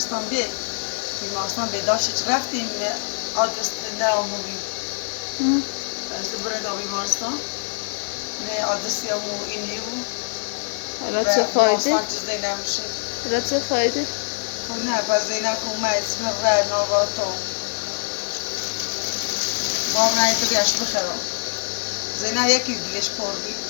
بیمارستان بیداشت رفتیم آدرس نه آموزی از بریم تا بیمارستان نه آدرسی همون اینی بود حالا چه فایده؟ بیمارستان چیز نمیشه حالا چه فایده؟ خب نه پس زینه کنم اسم رای نواتم باب رای تو بیاش بخرم زینه یکی دلش پر بی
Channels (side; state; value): right; silent; 63 dB below the other